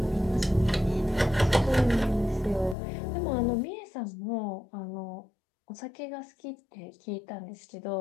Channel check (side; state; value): right; drops out; at 2.8 s